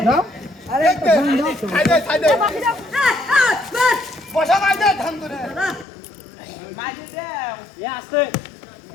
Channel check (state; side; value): drops out; right; at 5.9 s